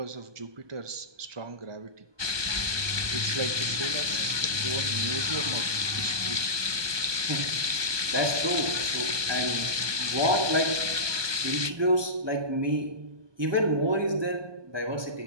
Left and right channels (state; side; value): late; left; 1.2 ms